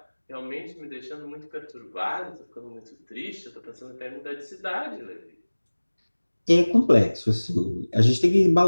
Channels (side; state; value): both; inverted; correlation -1.00